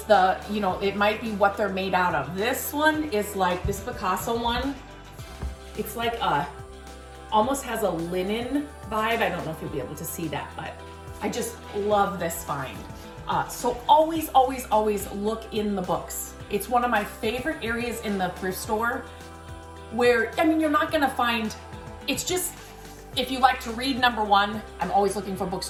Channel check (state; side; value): identical; both; correlation 1.00